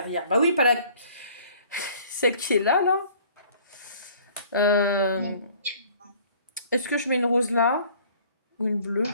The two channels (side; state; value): both; inverted; correlation -0.53